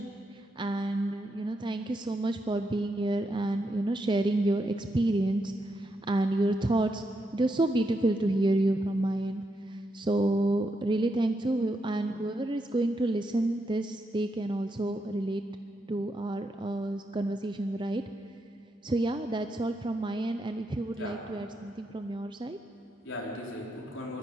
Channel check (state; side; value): normal; both; correlation 0.82